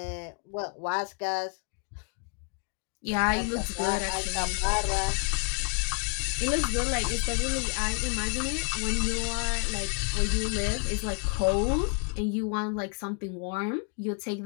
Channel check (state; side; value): quieter; right; 39.6 dB